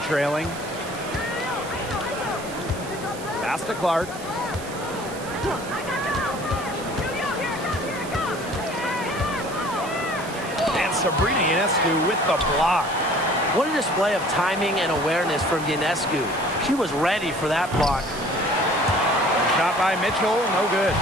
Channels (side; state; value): right; noise; hiss, 15 dB below the sound